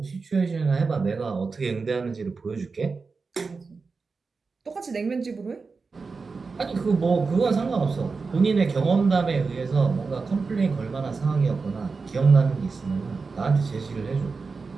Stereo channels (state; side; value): quieter; left; 4.5 dB